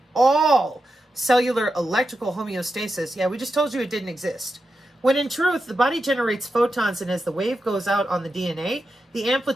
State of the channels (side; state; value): both; normal; correlation 0.88